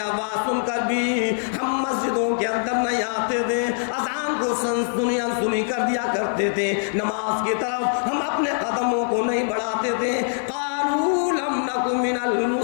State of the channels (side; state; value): right; silent; digital silence